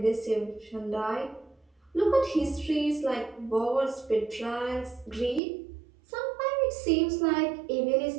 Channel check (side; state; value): left; drops out; at 5.4 s